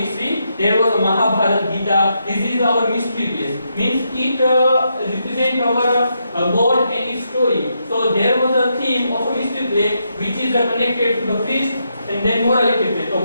there was a Mahabharata, Gita. This is our mystery plays. Means it represents our God and His story. So there was a theme of a mystery play which is connected to the priest, and then morality play. So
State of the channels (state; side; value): inverted; both; correlation -0.81